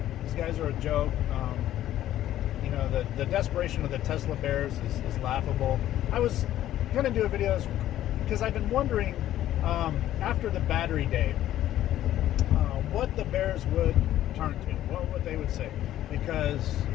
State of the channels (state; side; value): quieter; right; 12.8 dB